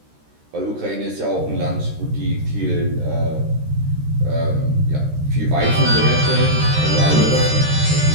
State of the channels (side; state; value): left; late; 13 ms